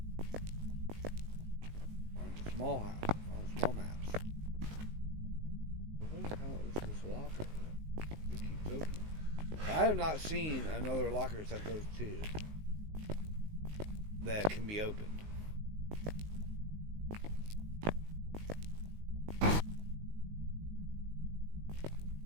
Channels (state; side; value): late; left; 19 ms